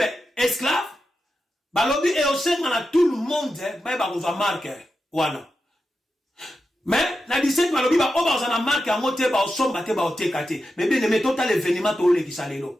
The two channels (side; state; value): both; normal; correlation 0.90